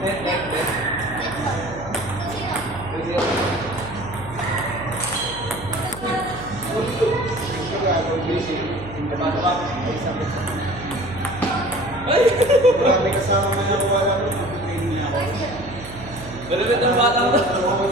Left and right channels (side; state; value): right; noise; hum, 14 dB below the sound